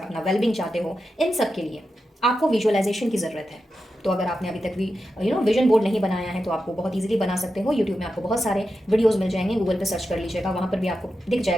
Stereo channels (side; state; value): both; normal; correlation 0.90